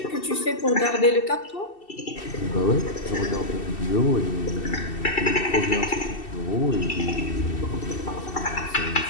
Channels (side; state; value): right; late; 2.7 ms